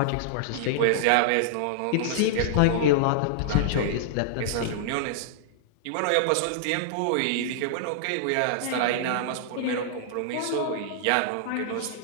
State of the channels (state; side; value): different; both; correlation -0.01